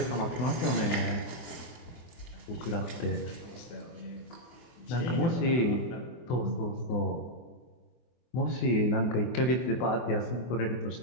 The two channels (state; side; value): late; right; 24 ms